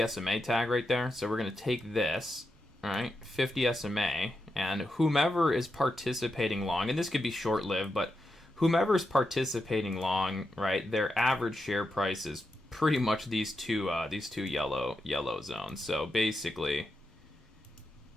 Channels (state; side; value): normal; both; correlation 0.87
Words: SMA tag right there. So we're going to take this, right, 50 SMA, and whomever is participating long, and this could be short-lived, but whomever is participating long, right, their average share price is pretty much these two yellow zones. So basically,